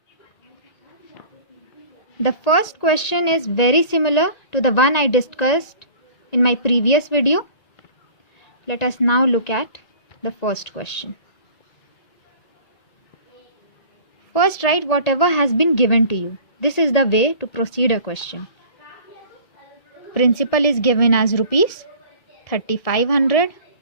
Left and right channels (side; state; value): right; late; 1.8 ms